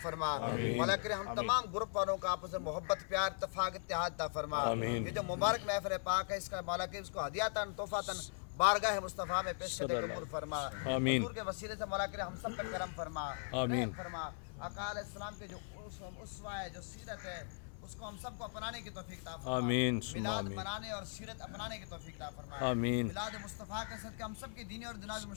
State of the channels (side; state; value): right; silent; 52 dB below the other